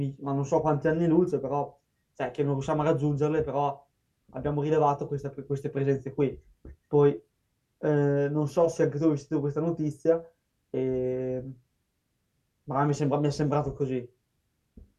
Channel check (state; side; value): identical; both; correlation 1.00